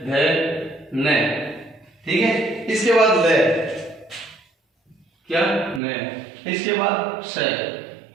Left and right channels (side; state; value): left; drops out; at 5.8 s